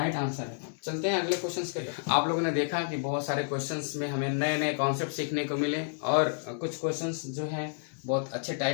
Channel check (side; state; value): right; silent; digital silence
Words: आंसर है। चलते हैं अगले क्वेश्चंस के लिए। आप लोगों ने देखा कि बहुत सारे क्वेश्चंस में हमें नए नए कॉन्सेप्ट सीखने को मिले, और कुछ क्वेश्चंस जो हैं बहुत अच्छे